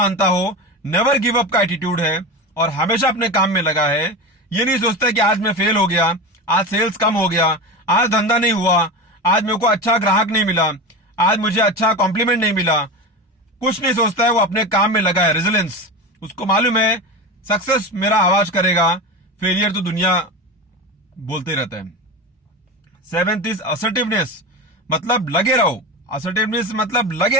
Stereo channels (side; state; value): both; normal; correlation 0.24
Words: हो, नेवर गिव अप का एटीट्यूड है और हमेशा अपने काम में लगा है. ये नहीं सोचता कि आज मैं फेल हो गया, आज सेल्स कम हो गया, आज धंधा नहीं हुआ, आज मेरे को अच्छा ग्राहक नहीं मिला, आज मुझे अच्छा कॉम्प्लीमेंट नहीं मिला. कुछ नहीं सोचता है, वो अपने काम में लगा है. रेजिलियंस, उसको मालूम है सक्सेस मेरा आवाज करेगा, फेलियर तो दुनिया बोलते रहता है. 7th इज असर्टिवनेस, मतलब लगे रहो. असर्टिवनेस मतलब लगे